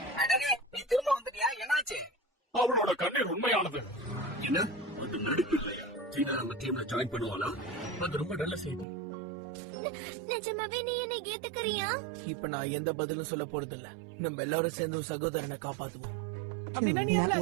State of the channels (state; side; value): drops out; left; at 8.8 s